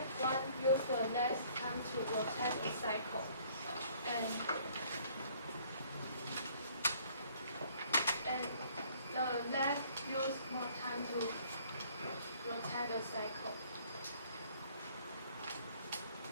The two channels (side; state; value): both; inverted; correlation -0.59